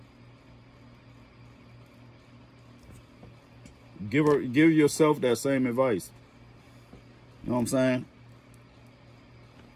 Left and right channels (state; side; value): identical; both; correlation 1.00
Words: Give yourself that same advice. You know what I'm saying?